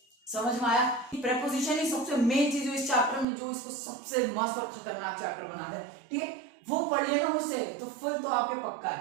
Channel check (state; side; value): drops out; left; at 3.2 s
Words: समझ में आया? प्रेपोजिशन ही सबसे मेन चीज है इस चैप्टर में, जो इसको सबसे मस्त और खतरनाक चैप्टर बना दे। ठीक है, वो पढ़ लिया ना मुझसे तो फुल तो आपके पक्का